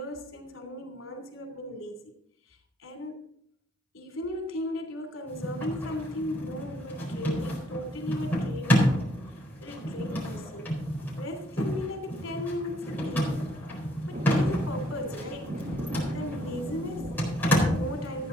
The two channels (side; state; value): both; normal; correlation 0.68